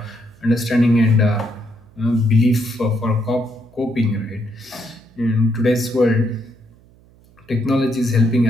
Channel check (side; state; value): right; noise; hum, 28 dB below the sound